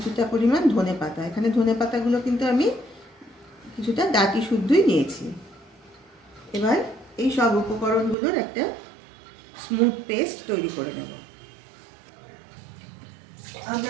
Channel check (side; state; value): left; drops out; at 8.2 s